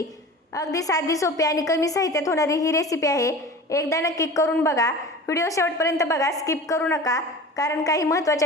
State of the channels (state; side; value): normal; both; correlation 0.37